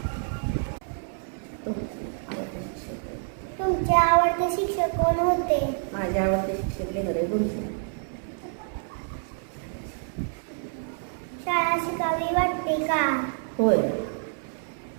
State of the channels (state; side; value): silent; left; 59 dB below the other